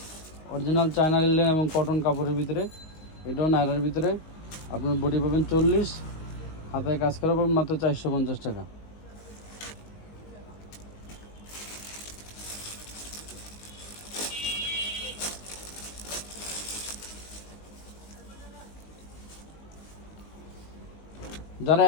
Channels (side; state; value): right; late; 19 ms